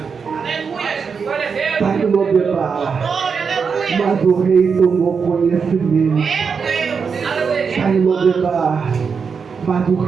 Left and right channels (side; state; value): left; quieter; 5.8 dB